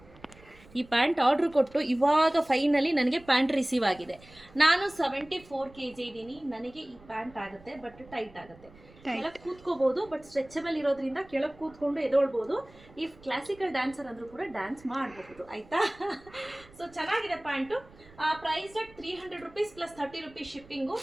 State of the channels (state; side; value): noise; right; rumble, 24 dB below the sound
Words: ಈ ಪ್ಯಾಂಟ್ ಆರ್ಡ್ರ್ ಕೊಟ್ಟು ಇವಾಗ ಫೈನಲಿ ನನಗೆ ಪ್ಯಾಂಟ್ ರಿಸೀವ್ ಆಗಿದೆ. ನಾನು 74 kg ಇದ್ದೀನಿ. ನನಗೆ ಈ ಪ್ಯಾಂಟ್ ಆಗುತ್ತೆ, ಬಟ್ ಟೈಟ್ ಆಗುತ್ತೆ. ಕೆಳಗೆ ಕೂತ್ಕೋಬಹುದು, ಬಟ್ ಸ್ಟ್ರೆಚಬಲ್ ಇರೋದ್ರಿಂದ ಕೆಳಗೆ ಕೂತ್ಕೊಂಡು ಎದೊಳ್ಬೋದು. ಈ ಕ್ಲಾಸಿಕಲ್ ಡ್ಯಾನ್ಸರ್ ಅಂದ್ರೂ ಕೂಡ ಡ್ಯಾನ್ಸ್ ಮಾಡಬಹುದು, ಆಯ್ತಾ? ಸೊ ಚೆನ್ನಾಗಿದೆ pant. Price at 300 rupees plus 30 rupees shipping.